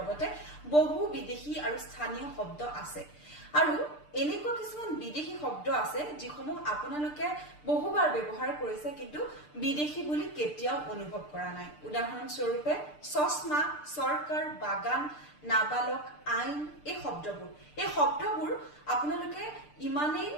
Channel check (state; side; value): late; right; 6.7 ms